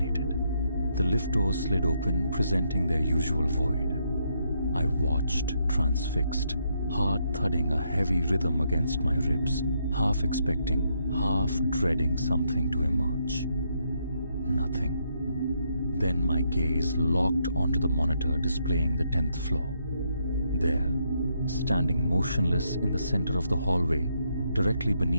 The lift doors slid open, presenting their usual void. I watched, transfixed, heart thudding a heavy rhythm against my ribs, half expecting, half dreading something to emerge. Nothing. Then my gaze locked onto the monitor displaying the 10th floor. There, standing motionless in the center of the hallway, directly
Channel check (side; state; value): both; inverted; correlation -0.76